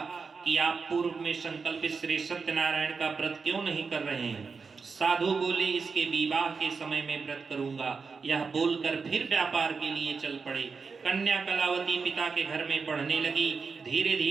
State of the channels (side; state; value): left; quieter; 5.0 dB